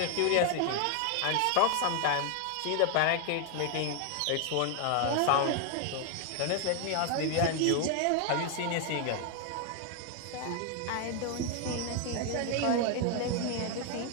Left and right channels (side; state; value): both; different; correlation 0.00